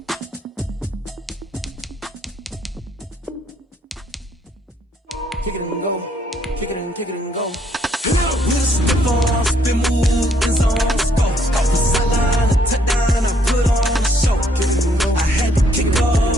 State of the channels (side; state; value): both; normal; correlation 0.68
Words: Kick it and go, kick it and go. We'll slip on, spin, move, in zone, go. The sideline, a touchdown, I put on a show. I had to kick